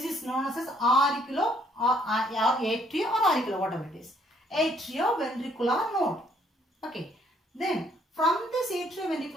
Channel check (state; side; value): normal; both; correlation 0.66